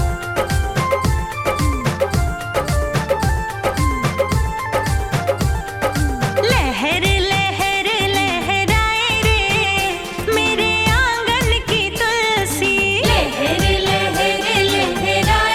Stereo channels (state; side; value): identical; both; correlation 1.00